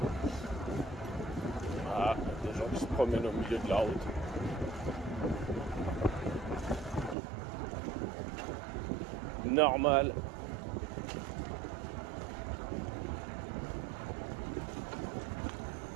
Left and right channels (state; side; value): drops out; left; at 7.2 s